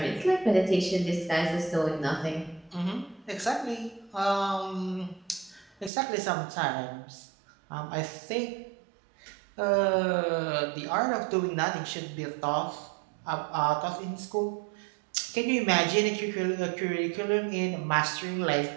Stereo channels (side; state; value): left; drops out; at 5.9 s